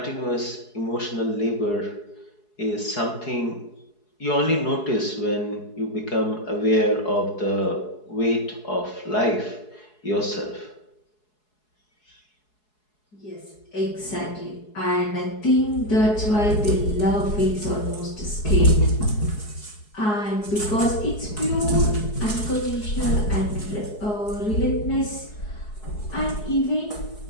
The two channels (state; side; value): late; right; 4.7 ms